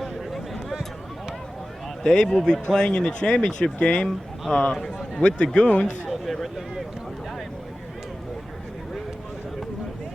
Dave will be playing in the championship game with the Goons.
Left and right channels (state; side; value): normal; both; correlation 0.95